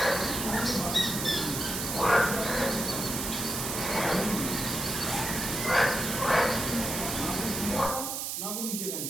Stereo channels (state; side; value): noise; right; hiss, 3 dB below the sound